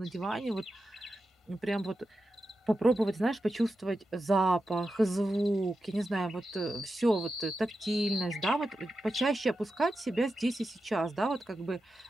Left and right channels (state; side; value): normal; both; correlation 0.90